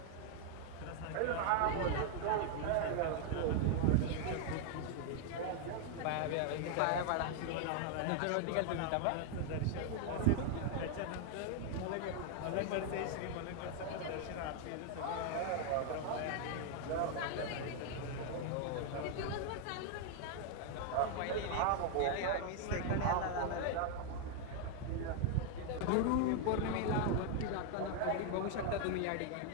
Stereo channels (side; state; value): both; different; correlation 0.00